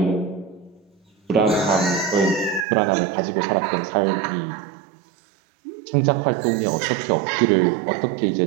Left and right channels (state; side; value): drops out; left; at 2.7 s